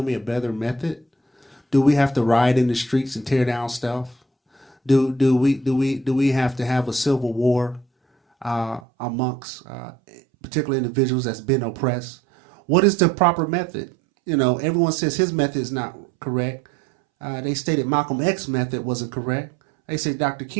me a better method? Do we have to riot in the streets and tear down stuff? Do we have to have a civil war amongst particular individuals that's been oppressed? What is the proper method? You know, everyone says his method is not correct. They stated Malcolm X's method wasn't correct. They say Dr.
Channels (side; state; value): left; drops out; at 8.8 s